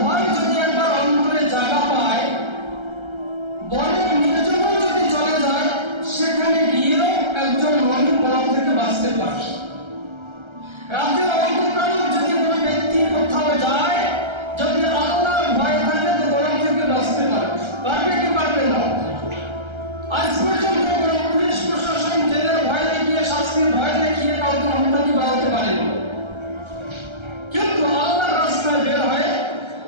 ভয় যদি একবার অন্তরে জায়গা পায়, বনের নির্জনে যদি চলে যায়, সেখানে গিয়েও একজন মুমিন পাপ থেকে বাঁচতে পারে। রাতের অন্ধকারে যদি কোনো ব্যক্তি কোথাও যায়, যদি আল্লাহর ভয় থাকে তো গরম থেকে বাঁচতে পারে। পারবে কি পারবে না? আজ পর্যন্ত কোনো পুলিশ প্রশাসন জেলের ভয় দেখিয়ে, শাস্তির ভয় দেখিয়ে কাউকে হত্যা বাড়াতে পারেনি। কিন্তু আল্লাহর রাস্তায় বের হয়ে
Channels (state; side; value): late; left; 1.3 ms